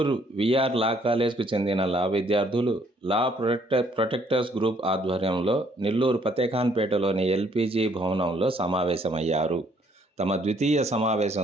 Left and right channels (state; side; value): normal; both; correlation 0.65